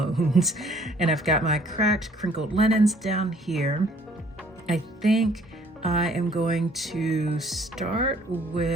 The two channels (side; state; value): both; normal; correlation 0.59